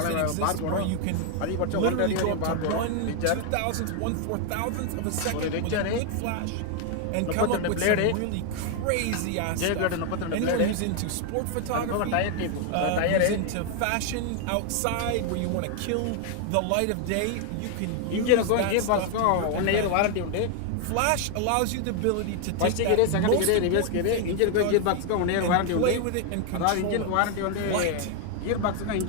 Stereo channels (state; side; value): different; both; correlation 0.00